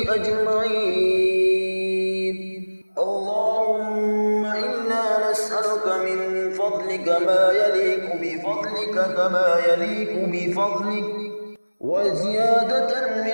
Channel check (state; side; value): inverted; both; correlation -1.00